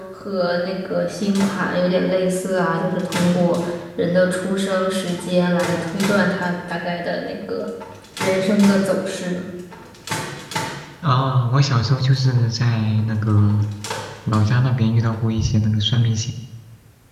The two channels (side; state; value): both; identical; correlation 1.00